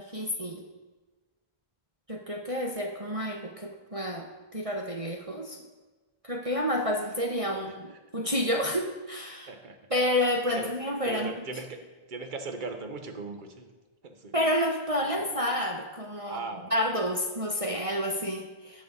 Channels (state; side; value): late; left; 1.6 ms